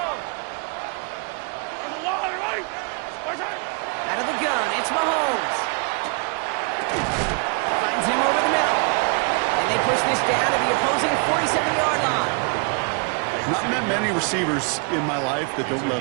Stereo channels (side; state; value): left; quieter; 35.3 dB